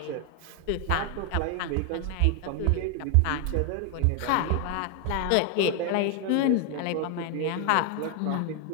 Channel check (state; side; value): different; both; correlation 0.01